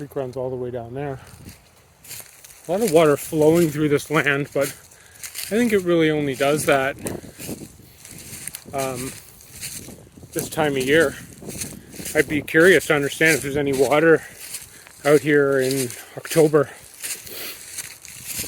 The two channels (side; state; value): both; identical; correlation 1.00